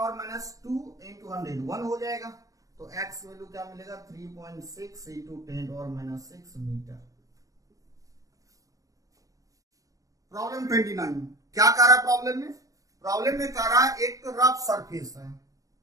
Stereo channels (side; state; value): left; late; 0.16 ms